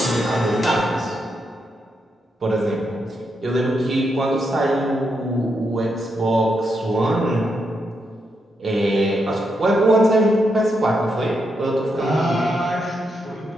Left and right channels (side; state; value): both; normal; correlation 0.82